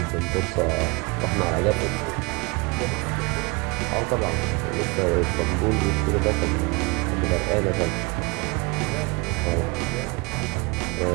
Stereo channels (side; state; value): left; quieter; 27.1 dB